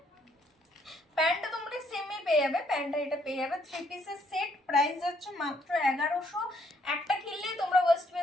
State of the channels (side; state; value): both; normal; correlation 0.69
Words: প্যান্টটা তোমরা সেমই পেয়ে যাবে, প্যান্টটা এটা পেয়ে যাবে 3 পিসের সেট। প্রাইস যাচ্ছে মাত্র 1100। একটা কিনলেই তোমরা ওয়েস্ট